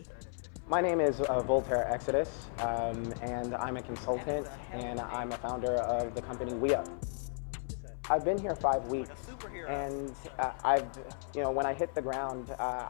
My name is Voltaire Exodus, and I'm a consultant, and I'm a founder of the company We Up. I've been here 5 weeks, and when I hit the ground,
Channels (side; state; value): right; silent; 55 dB below the other